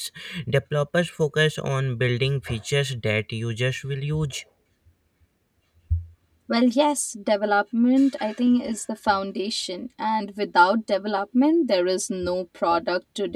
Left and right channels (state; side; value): identical; both; correlation 1.00